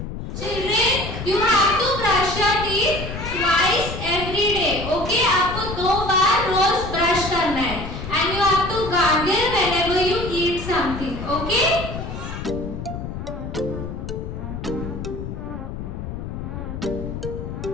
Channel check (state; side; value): noise; left; rumble, 7 dB below the sound